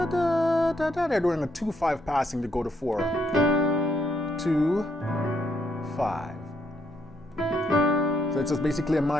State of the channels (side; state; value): both; normal; correlation 0.75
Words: they're doing a 2-5 passing to go to 4. 2, 5. So it's just basically a